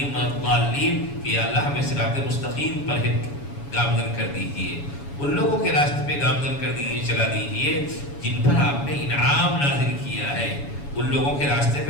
ولا الضالین، کہ یا اللہ ہمیں صراط مستقیم پر گامزن کر دیجئے، ان لوگوں کے راستے پہ گامزن کر دیجئے، چلا دیجئے جن پر آپ نے انعام نازل کیا ہے. ان لوگوں کے راستے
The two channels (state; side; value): late; right; 7.1 ms